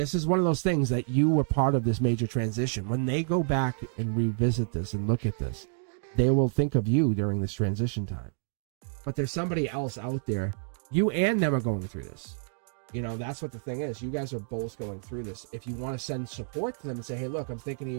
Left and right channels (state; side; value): silent; left; digital silence